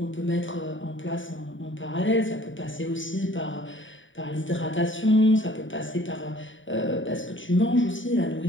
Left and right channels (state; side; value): late; right; 0.56 ms